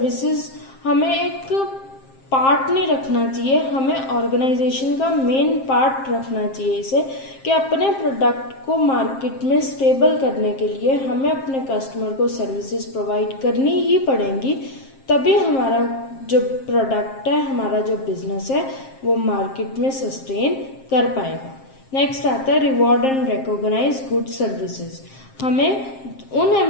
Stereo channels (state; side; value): late; right; 7.5 ms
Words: हमें एक पार्ट नहीं रखना चाहिए, हमें ऑर्गेनाइजेशन का मेन पार्ट रखना चाहिए इसे, कि अपने प्रोडक्ट को मार्केट में स्टेबल करने के लिए हमें अपने कस्टमर को सर्विसेज प्रोवाइड करनी ही पड़ेंगी, तभी हमारा जो प्रोडक्ट है, हमारा जो बिजनेस है वो मार्केट में सस्टेन कर पाएगा। नेक्स्ट आता है reward and recognise good services. हमें उन